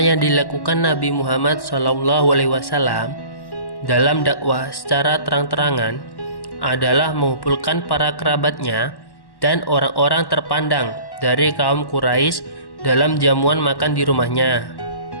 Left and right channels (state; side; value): late; right; 1.1 ms